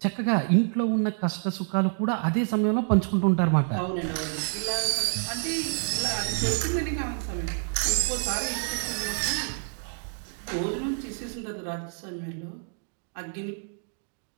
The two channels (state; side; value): silent; left; 59 dB below the other